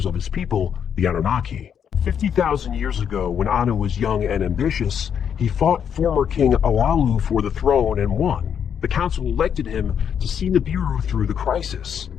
of his people, the Anunnaki. 50,000 years ago, when Anu was young and ambitious, he fought former King Alalu for the throne and won. The council elected him to see Nibiru through the crisis.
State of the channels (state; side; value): quieter; right; 8.1 dB